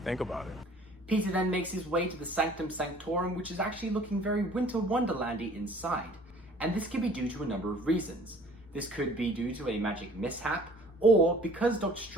Think about it. Peter then makes his way to the Sanctum Sanctorum, which is actually looking very Winter Wonderlandy inside. And this could be due to a number of reasons. This could be due to a magic mishap, or because Doctor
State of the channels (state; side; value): normal; both; correlation 0.52